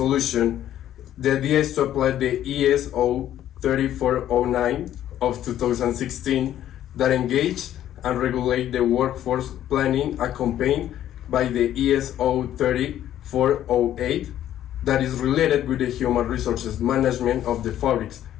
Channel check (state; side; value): quieter; right; 11.8 dB